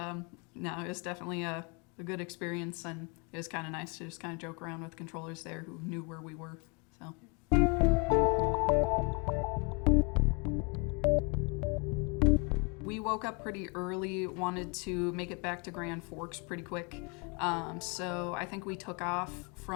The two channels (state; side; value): quieter; right; 32.6 dB